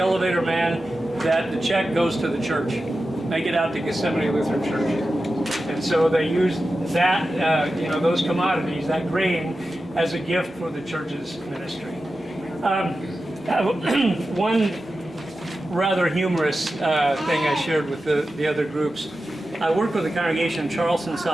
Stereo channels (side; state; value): both; normal; correlation 0.92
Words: man that the check goes to the church. Make it out to Gethsemane Lutheran Church. And so they used that, those commodities, that grain, as a gift for the church's ministry. One rather humorous thing I shared with the other groups. I worked with a congregation in Charleston,